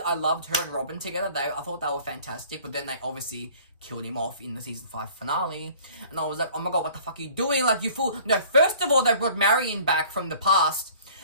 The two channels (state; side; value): inverted; both; correlation -0.51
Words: loved her and Robin together. I thought they were fantastic, but then they obviously killed him off in the season 5 finale, and I was like, oh my god, what the fuck are you doing? Like, you fool. No, first of all, they brought Marion back from the past,